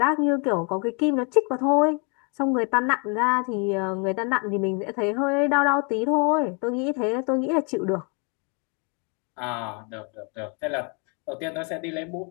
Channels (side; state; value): right; quieter; 35.4 dB